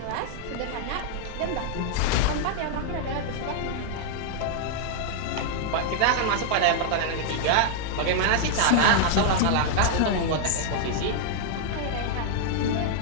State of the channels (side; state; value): both; different; correlation -0.01